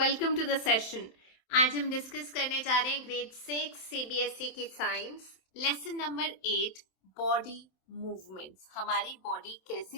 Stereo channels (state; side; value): late; right; 27 ms